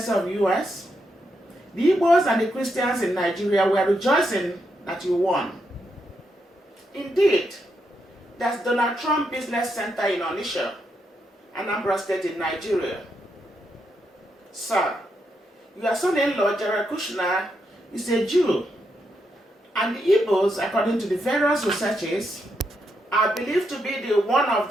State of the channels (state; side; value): normal; both; correlation 0.81